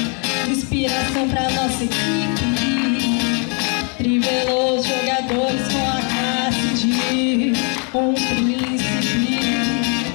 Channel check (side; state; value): right; quieter; 37.2 dB